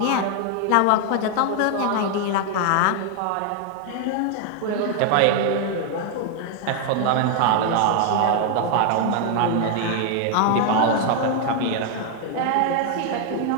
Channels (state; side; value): different; both; correlation 0.00